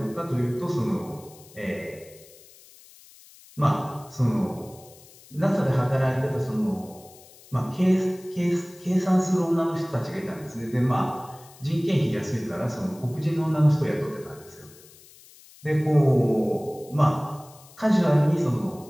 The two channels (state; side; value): noise; left; hiss, 23 dB below the sound